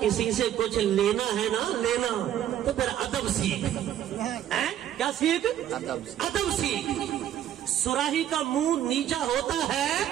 سے کچھ لینا ہے نا لینا تو پھر ادب سیکھ، کیا سیکھ؟ ادب سیکھ۔ سراہی کا منہ نیچا ہوتا ہے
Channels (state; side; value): quieter; left; 11.2 dB